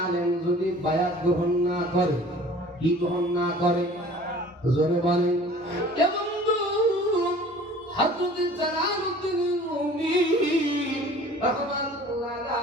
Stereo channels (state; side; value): normal; both; correlation 0.47